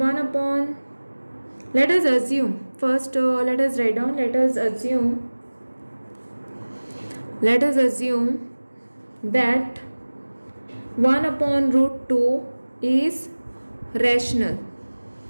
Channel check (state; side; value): inverted; both; correlation -1.00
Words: us assume first. Let us write down. Let us assume that 1 upon root 2 is rational.